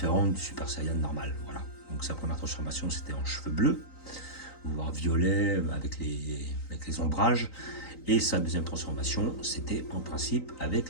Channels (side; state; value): right; late; 3.9 ms